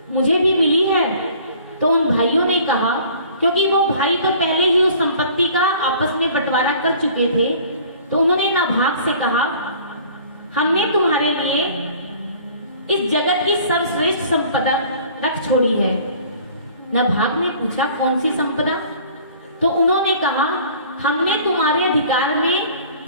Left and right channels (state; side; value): inverted; both; correlation -0.50